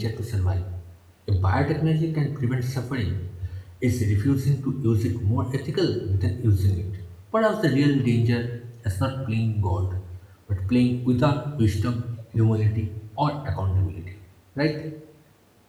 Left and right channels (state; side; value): identical; both; correlation 1.00